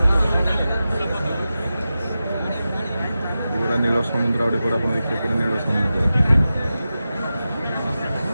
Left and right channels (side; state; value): both; inverted; correlation -0.93